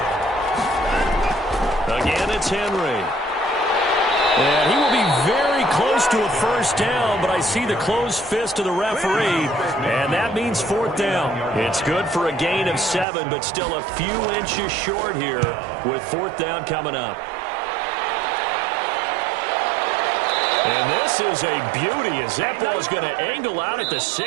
Again, it's Henry. And he will be very close to a 1st down, but I see the closed fist of the referee, and that means 4th down. It's good for a gain of 7, but still a few inches short here with 4th down coming up. And this is a beauty as that ball is going to angle out at the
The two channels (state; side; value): drops out; left; at 13.1 s